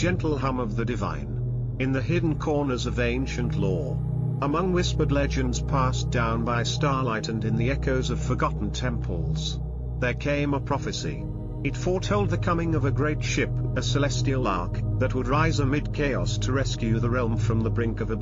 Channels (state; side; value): identical; both; correlation 1.00